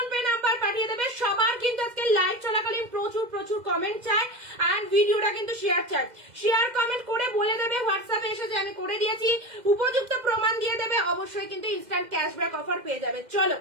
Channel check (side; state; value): left; late; 2.1 ms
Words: পে নাম্বার পাঠিয়ে দেবে। সবার কিন্তু আজকে লাইভ চলাকালীন প্রচুর প্রচুর কমেন্ট চাই এন্ড ভিডিওটা কিন্তু শেয়ার চাই। শেয়ার কমেন্ট করে বলে দেবে হোয়াটসঅ্যাপে এসে যে আমি করে দিয়েছি, উপযুক্ত প্রমাণ দিয়ে দেবে। অবশ্যই কিন্তু ইনস্ট্যান্ট ক্যাশব্যাক অফার পেয়ে যাবে। চলো